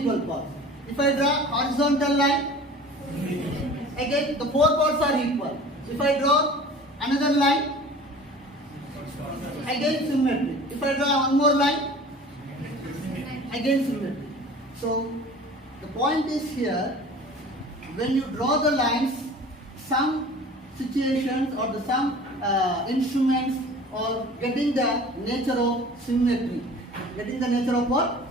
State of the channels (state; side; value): normal; both; correlation 0.43